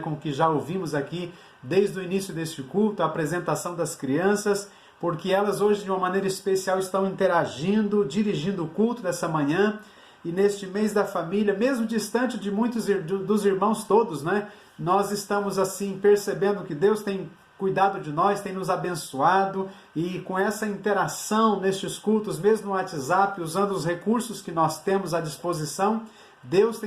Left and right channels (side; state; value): both; identical; correlation 1.00